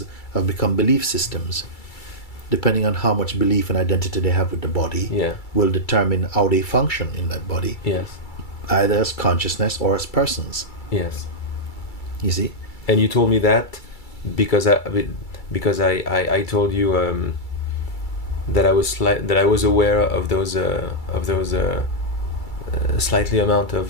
have become belief systems. Depending on how much belief and identity they have with the body, Yeah. will determine how they function in that body, Yes. either as consciousness or as persons. Yes. You see? And you told me that because I told you that I was aware of those slightly amount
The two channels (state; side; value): late; right; 2.3 ms